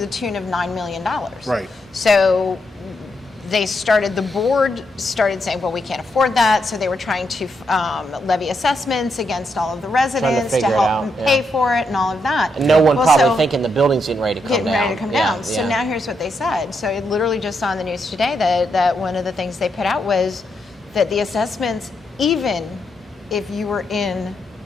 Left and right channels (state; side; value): normal; both; correlation 0.81